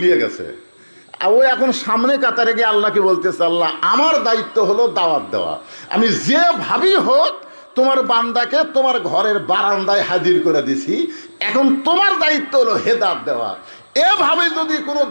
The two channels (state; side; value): inverted; both; correlation -1.00